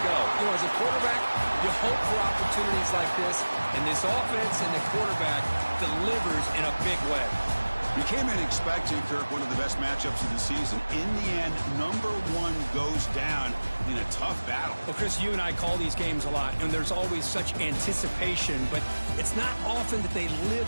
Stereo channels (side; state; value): both; inverted; correlation -1.00